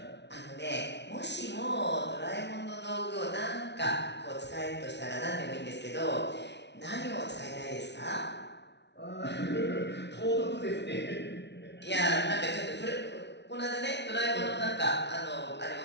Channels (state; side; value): late; right; 0.50 ms